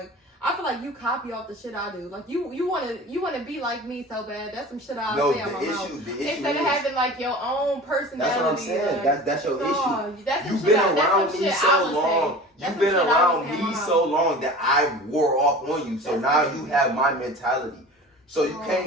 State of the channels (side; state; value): both; normal; correlation 0.38